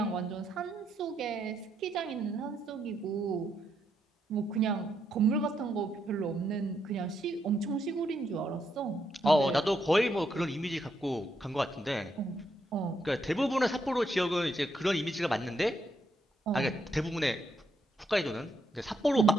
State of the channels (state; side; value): normal; both; correlation 0.78